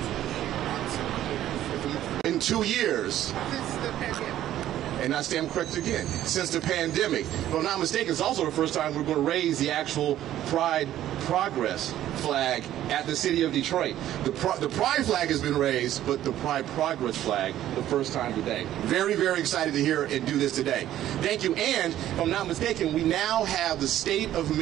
In 2 years. And I stand corrected again, since the pandemic. If I'm not mistaken, it's also the first time we're going to raise the actual Pride Progress flag at the city of Detroit. The Pride flag has been raised, but the Pride Progress flag, the first time today. Very, very excited to hear and do this today. Thank you. And if I'm not mistaken, we now have the state of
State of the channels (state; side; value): quieter; left; 12.6 dB